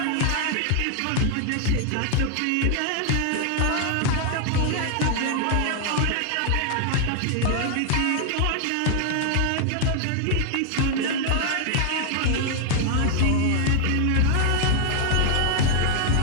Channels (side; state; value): both; different; correlation 0.00